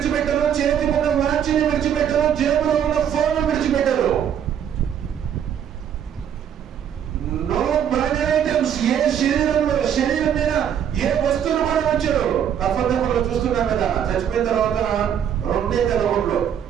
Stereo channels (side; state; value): left; quieter; 9.1 dB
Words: చేతికున్న వాచిని విడిచిపెట్టరు, జేబులో ఉన్న ఫోన్ విడిచిపెట్టరు. నో బాడీ ఐటమ్స్, ఏ శరీరం మీద ఏ వస్తువులు కూడా వచ్చారు. కఫర్లో చూస్తున్నాం కదా, చచ్చిపోయిన తర్వాత రెండే తెలగొడ్లు,